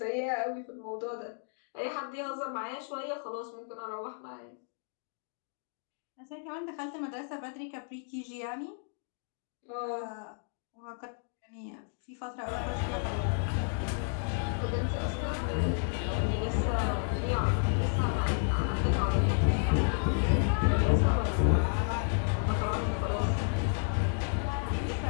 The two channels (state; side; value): silent; right; 56 dB below the other